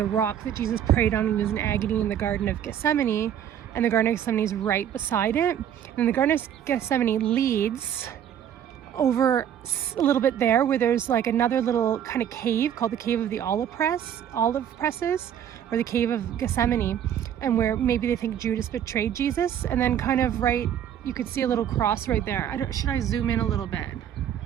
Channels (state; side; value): quieter; left; 9.8 dB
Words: rock that Jesus prayed on when he was in agony in the Garden of Gethsemane, and the Garden of Gethsemane is right beside it. And the Garden of Gethsemane leads over a little bit there where there's like another little kind of cave called the Cave of the Olive Presses, or the Cave of Gethsemane, and where maybe they think Judas betrayed Jesus. And then kind of right, you could see a little cross right there. Should I zoom in a little bit?